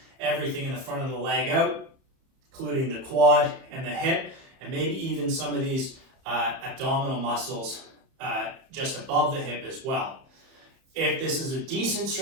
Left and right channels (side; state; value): left; late; 31 ms